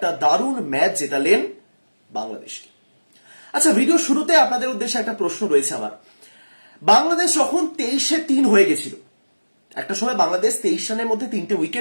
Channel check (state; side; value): inverted; both; correlation -1.00